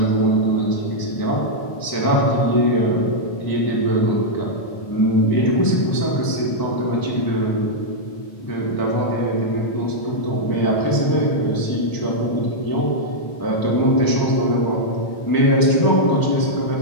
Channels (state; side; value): late; right; 1.0 ms